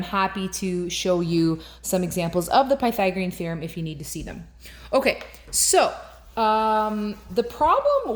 happy to show you some examples of the Pythagorean theorem if you need to see them. Okay, so the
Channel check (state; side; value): identical; both; correlation 1.00